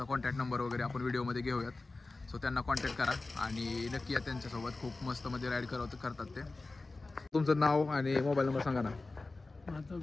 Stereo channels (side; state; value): right; quieter; 3.4 dB